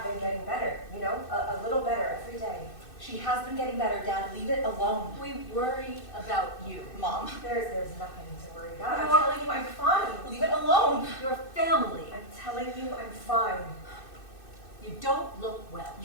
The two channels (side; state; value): right; late; 2.6 ms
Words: been getting better, you know, a little better every day. She has been getting better, Dad. Leave it alone. We worry about you. Mom, There's nothing to worry about. I'm No. telling you I'm fine. leave it alone. Your family. I'm telling you I'm fine. You don't look well.